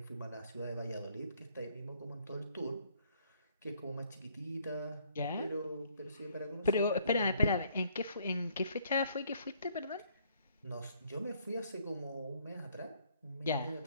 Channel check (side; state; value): both; inverted; correlation -0.65